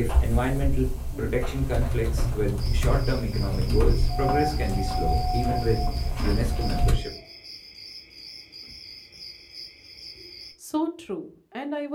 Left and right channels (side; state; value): both; identical; correlation 1.00